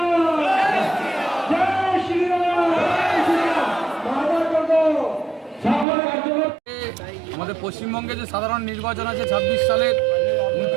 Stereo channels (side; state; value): left; drops out; at 5.9 s